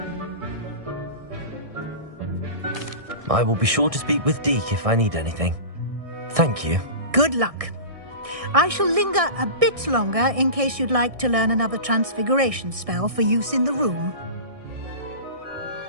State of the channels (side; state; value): left; late; 1.6 ms